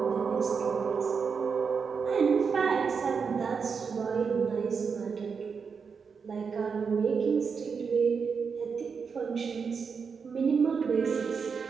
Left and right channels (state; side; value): quieter; left; 5.7 dB